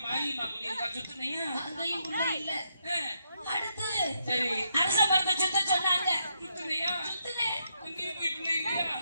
மாரியம்மா குடியிருக்கா, சுத்துனியா? அங்கேயும் பிள்ளை இல்ல. அடுத்து சரி அரச மரத்தை சுத்த சொன்னாங்க, சுத்துனியா? சுத்தினேன் அங்கேயும் போய் பிள்ளை இல்லையா?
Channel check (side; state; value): both; inverted; correlation -0.79